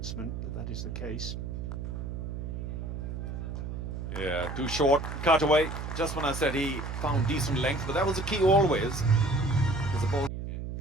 that that is the case. Yeah, too short, cut away. Just when I said he found decent length, but that was the key always. The ball.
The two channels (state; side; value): noise; right; hum, 6 dB below the sound